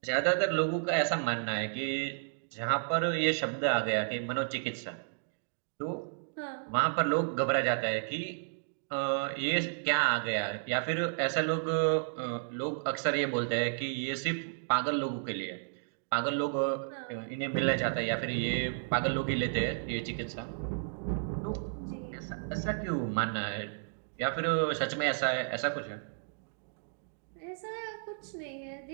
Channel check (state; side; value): silent; left; digital silence